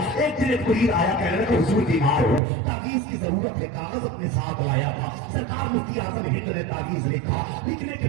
एक दिन एक मुरीद आया, कहने लगा हुजूर बीमार हो, तावीज़ की जरूरत है, कागज अपने साथ लाया था। सरकार मुफ्ती आजम हिंद ने तावीज़ लिखा, लिखने के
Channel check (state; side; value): drops out; left; at 2.4 s